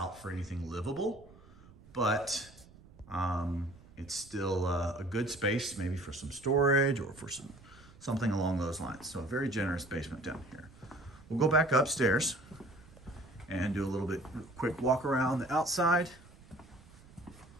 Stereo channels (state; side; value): noise; right; rumble, 22 dB below the sound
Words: for anything livable, but it's still a good space, maybe for some storage or for something along those lines. So a very generous basement down here. We'll go back upstairs and do a little bit quick walk around the outside.